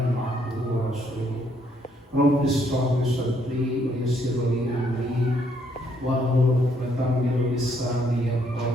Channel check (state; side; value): normal; both; correlation 0.70